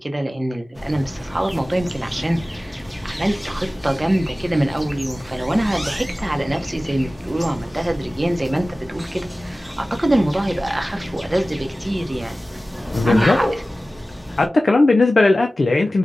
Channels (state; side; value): normal; both; correlation 0.96